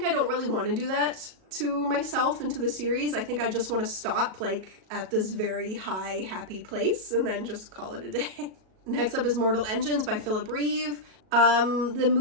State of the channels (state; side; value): late; left; 37 ms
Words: I don't really want to do that to myself and to the series. I think I just want to stop like at this very high, happy place and then just call it a day. Next up is Mortal Engines by Philip Reeve. The